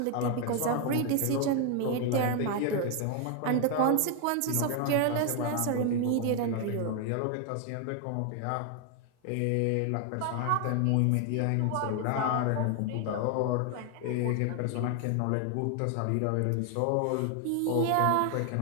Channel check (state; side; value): different; both; correlation 0.00